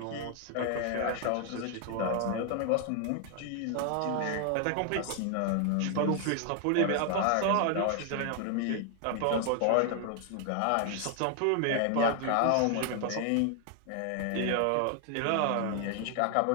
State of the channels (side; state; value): both; different; correlation 0.00